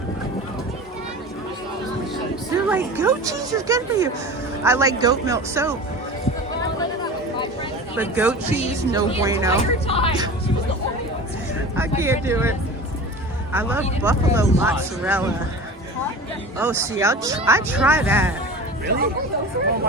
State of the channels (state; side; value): normal; both; correlation 0.35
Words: They're like, goat cheese is good for you. I like goat milk soap. But goat cheese, no bueno. I can't do it. I love buffalo mozzarella. Oh, see, I try that. Really?